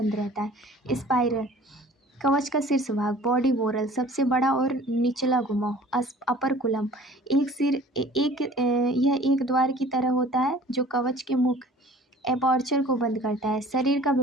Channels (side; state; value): both; normal; correlation 0.48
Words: रहता है। स्पाइरल, कवच का शीर्ष भाग। बॉडी वोरल, सबसे बड़ा और निचला घुमाव। अपर कुलम, एक सिर यह एक द्वार की तरह होता है जो कवच के मुख एपर्चर को बंद करता है। शरीर का